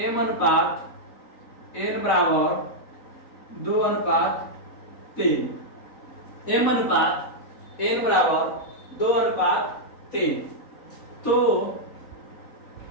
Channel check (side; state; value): right; late; 3.9 ms